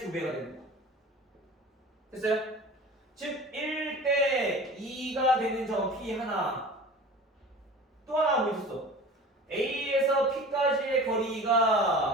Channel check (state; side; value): normal; both; correlation 0.39